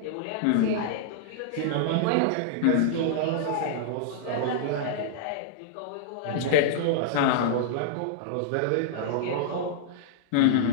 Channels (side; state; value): both; different; correlation -0.02